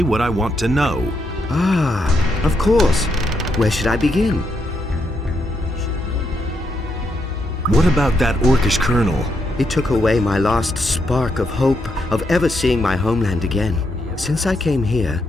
what I want to know. Ah, of course. Where should I begin? What about that orcish colonel? It took away my last spark of hope of ever seeing my homeland again. Since I came here,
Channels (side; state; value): both; normal; correlation 0.79